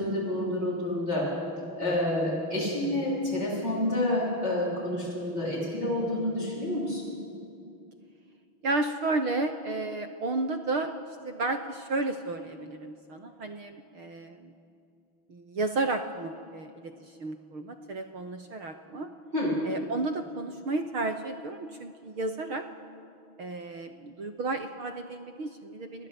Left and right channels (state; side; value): late; left; 6.1 ms